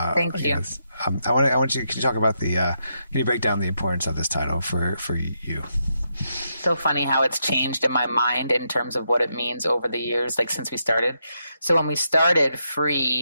Thank you. I want you to talk about can you break down the importance of this title for you? So funny how it's changed in my mind in terms of what it means over the years, since we started. So when we started,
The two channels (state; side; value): inverted; both; correlation -0.81